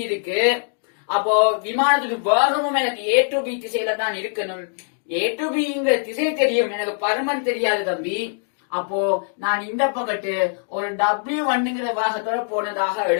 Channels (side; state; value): right; silent; digital silence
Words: இருக்கு. அப்போ விமானத்துடைய வேகமும் எனக்கு A to B திசையில தான் இருக்கணும். A to Bங்கிற திசை தெரியும், எனக்கு பருமன் தெரியாது தம்பி. அப்போ நான் இந்த பக்கத்து ஒரு W1ங்கிற வேகத்தோட போனதாக